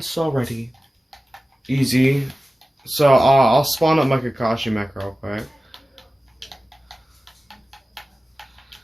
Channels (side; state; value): both; normal; correlation 0.95